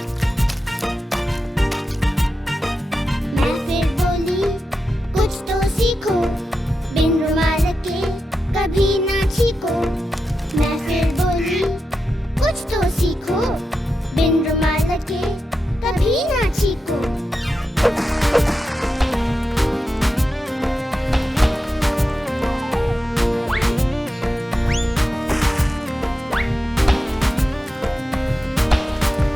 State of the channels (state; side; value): normal; both; correlation 0.89